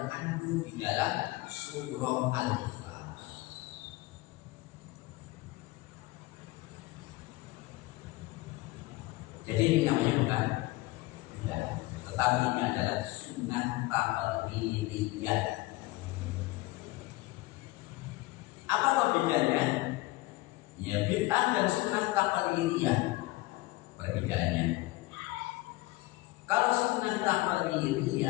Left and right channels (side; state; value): right; quieter; 19.9 dB